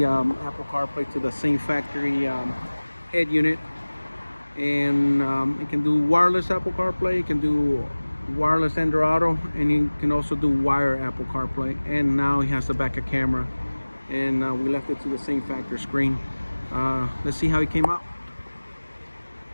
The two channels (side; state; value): both; inverted; correlation -1.00